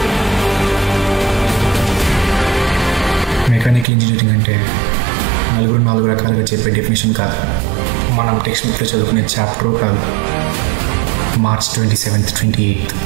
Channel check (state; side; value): drops out; left; at 3.9 s